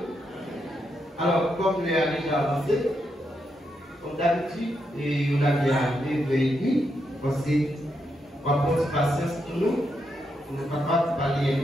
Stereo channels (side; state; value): both; normal; correlation 0.82